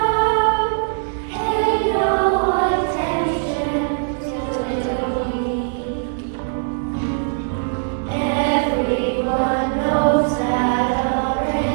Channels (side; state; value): left; silent; digital silence